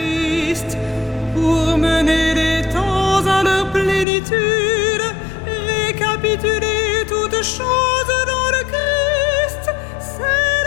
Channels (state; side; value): drops out; right; at 4.0 s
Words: pour mener les temps à leur plénitude, récapituler toutes choses dans le Christ,